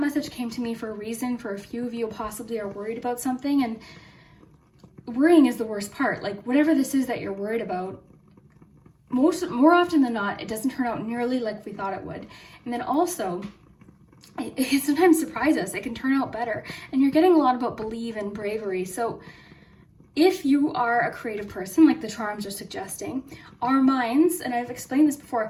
came to me for a reason. For a few of you possibly are worried about something, and worrying is the worst part. Like whatever this is that you're worried about, more often than not, it doesn't turn out nearly like we thought it would. And then also, it can sometimes surprise us. It can turn out better. And you're getting a lot about believe and bravery. So if you are a creative person, like the charms are suggesting, our minds, and I've explained this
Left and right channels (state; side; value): identical; both; correlation 1.00